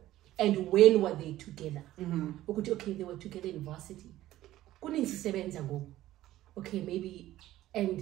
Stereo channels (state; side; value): quieter; left; 14.7 dB